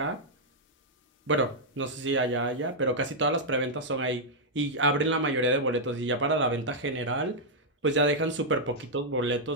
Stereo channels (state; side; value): normal; both; correlation -0.05